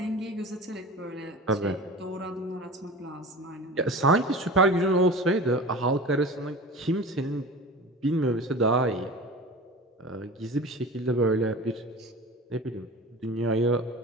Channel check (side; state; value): both; normal; correlation 0.35